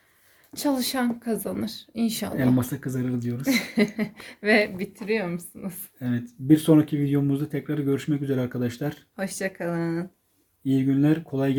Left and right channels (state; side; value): identical; both; correlation 1.00